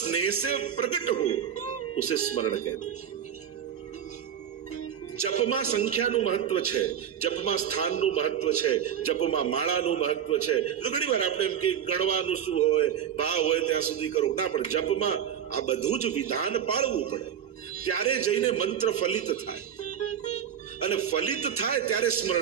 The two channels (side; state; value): left; quieter; 8.9 dB